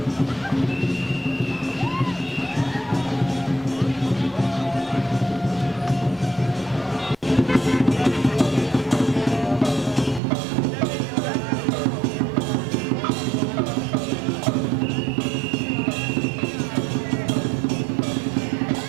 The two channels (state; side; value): drops out; left; at 10.2 s